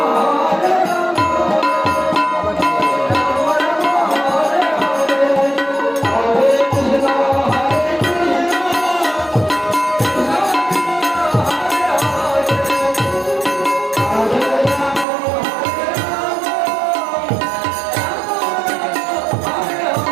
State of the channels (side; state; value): left; drops out; at 15.1 s